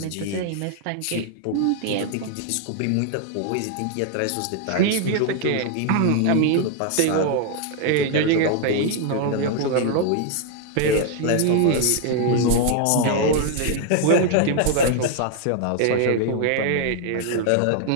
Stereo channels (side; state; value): both; different; correlation 0.00